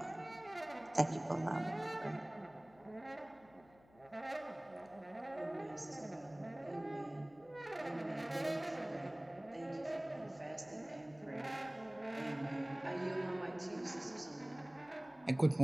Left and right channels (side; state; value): left; noise; hum, 26 dB below the sound